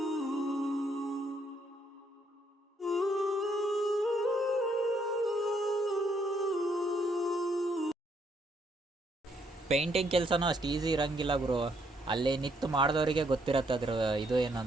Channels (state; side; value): normal; both; correlation 0.72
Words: ಪೇಂಟಿಂಗ್ ಕೆಲಸನೂ ಅಷ್ಟು ಈಸಿ ಇರೋಂಗಿಲ್ಲ ಗುರು. ಅಲ್ಲಿ ನಿಂತು ಮಾಡಿದವರಿಗೆ ಗೊತ್ತಿರತ್ತೆ ಅದ್ರ ಇದು